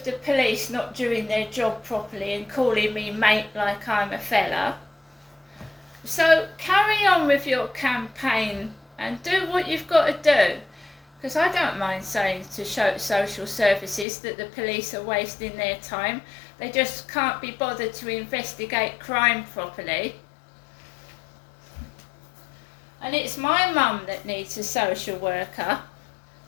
the police not doing their job properly and calling me mate like I'm a fella. So carry on with your campaign and do what you've got to do. Because I don't mind saying to social services that the police are wasting their time. They just can't be bothered to investigate crime properly. And it's my mum that needs a social worker,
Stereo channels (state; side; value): drops out; right; at 14.1 s